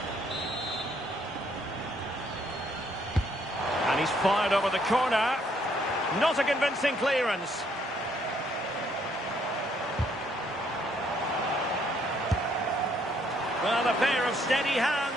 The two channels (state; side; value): normal; both; correlation 0.68